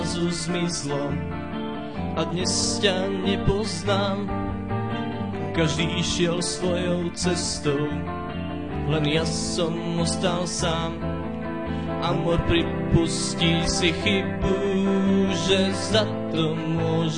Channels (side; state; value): both; identical; correlation 1.00